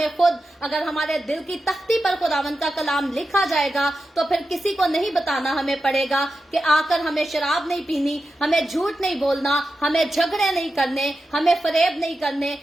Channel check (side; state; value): both; normal; correlation 0.91